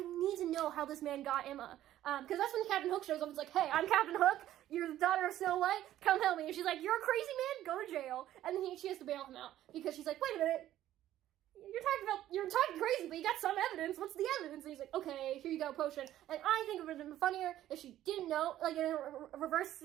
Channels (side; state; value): left; quieter; 13.0 dB